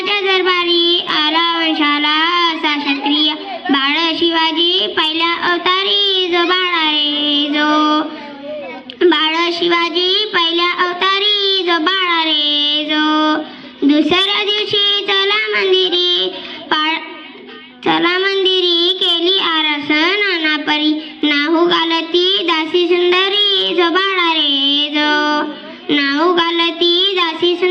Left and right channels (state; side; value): identical; both; correlation 1.00